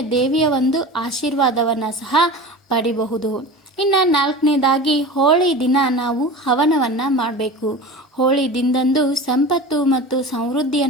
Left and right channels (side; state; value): both; normal; correlation 0.33